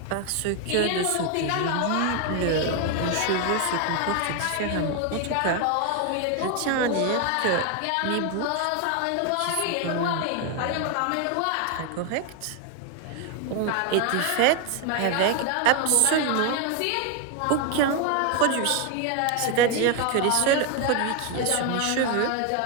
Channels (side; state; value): both; different; correlation 0.01